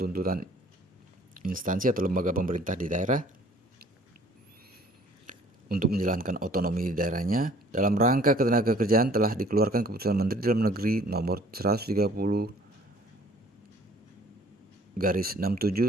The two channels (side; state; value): both; normal; correlation 0.54